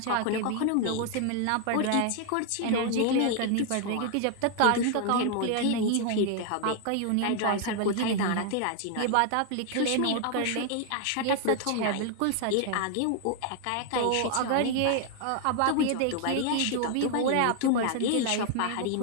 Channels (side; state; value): both; different; correlation 0.00